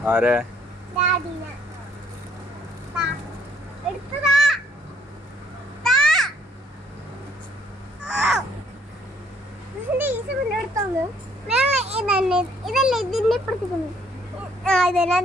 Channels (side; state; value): both; normal; correlation 0.64